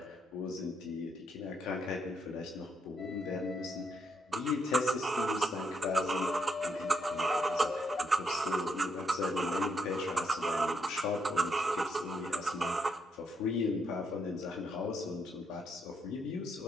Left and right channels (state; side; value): normal; both; correlation 0.77